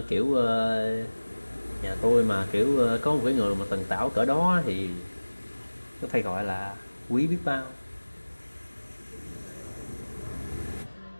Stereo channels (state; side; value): inverted; both; correlation -1.00